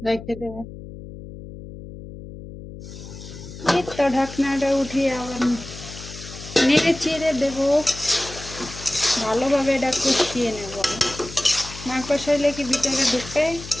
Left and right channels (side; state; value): left; noise; hum, 13 dB below the sound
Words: রেখে দেবে। এই তো ঢাকনাটা উঠিয়ে আবার নেড়ে চেড়ে দেবো, ভালোভাবে এটা কষিয়ে নেব। না কষাইলে কি ভিতরে ঢুকে